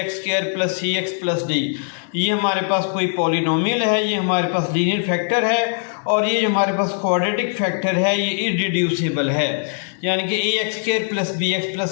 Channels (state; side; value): silent; right; 59 dB below the other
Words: square plus C X plus D. ये हमारे पास कोई पॉलिनोमियल है, ये हमारे पास लीनियर फैक्टर है और ये जो हमारे पास क्वाड्रेटिक फैक्टर है ये इररिड्यूसिबल है, यानी कि ax square plus b x plus